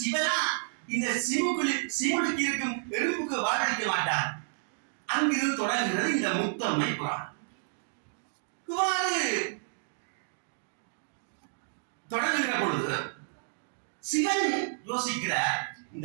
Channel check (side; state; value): left; silent; digital silence